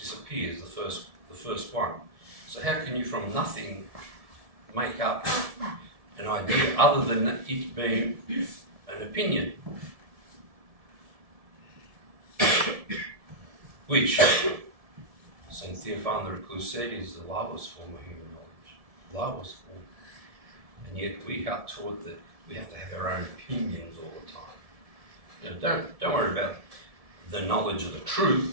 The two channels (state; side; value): late; left; 1.7 ms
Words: the first one. So how can you from nothing make up an idea other than it being an opinion? Which St. Theophan the Recluse said is the lowest form of human knowledge. Lowest form. And yet we are taught that we have to have our own opinions all the time. Don't worry about the knowledge of the